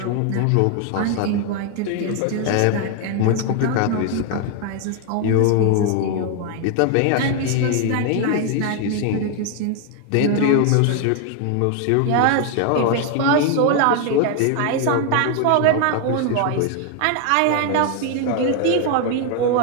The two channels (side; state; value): both; different; correlation 0.00